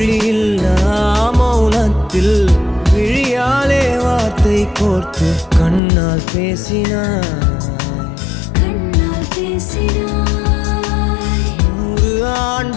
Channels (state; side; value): drops out; right; at 5.8 s